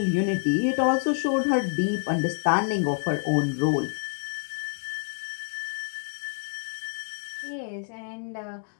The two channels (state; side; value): silent; right; digital silence